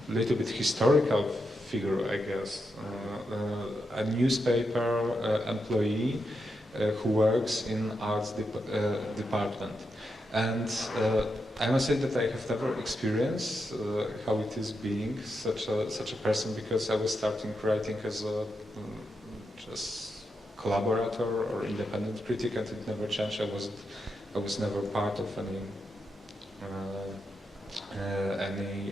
little bit historical figure, I guess, a newspaper employee who works in arts department. And I must say that I have never experienced how it is being such a person, because I was starting writing as a just collaborator or independent critic, and it never changed. I was never part of any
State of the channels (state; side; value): normal; both; correlation 0.85